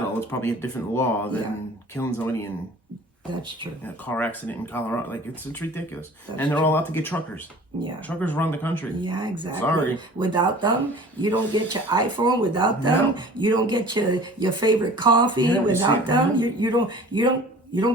it's probably a different law than killing somebody in That's true. a car accident in Colorado. Like, it's ridiculous. That's and they're all out to get truckers. Yeah. Truckers run the country. Yeah, exactly. Sorry. Without them, you don't get your iPhone. Without them, you don't get your favorite coffee. Without them, you don't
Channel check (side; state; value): both; normal; correlation 0.45